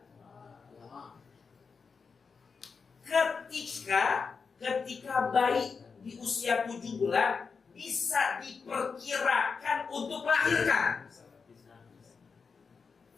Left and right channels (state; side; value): quieter; right; 5.3 dB